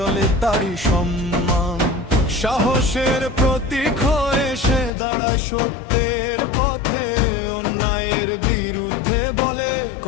তারই সম্মান। সাহসের প্রতীক হয়ে সে দাঁড়ায় সত্যের পথে, অন্যায়ের বিরুদ্ধে বলে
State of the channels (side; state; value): right; drops out; at 4.9 s